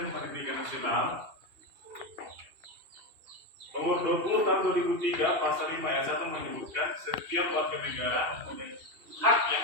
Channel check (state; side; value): late; left; 2.7 ms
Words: Pendidikan Nasional Nomor 20 tahun 2003 pasal 5 ayat 1 menyebutkan setiap warga negara mempunyai hak yang